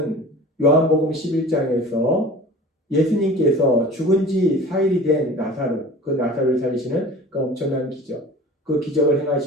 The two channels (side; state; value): both; normal; correlation 0.41